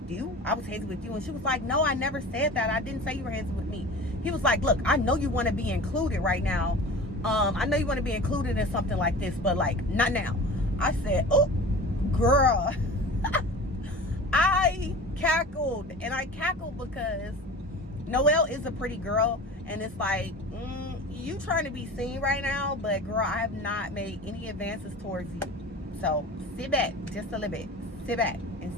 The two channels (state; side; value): normal; both; correlation 0.37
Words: you? And she was like, no, I never said that. I didn't say you were handsy with me. He was like, look, I know you want to be included right now. I know you want to be included in something like this, but like, not now. I said, oh, girl. I cackled, and I cackled because Noelle is a pretty girl, and it's like, you trying to be seen right now, but girl, I have not made any advances towards you. So sit back just a little bit. Sit back and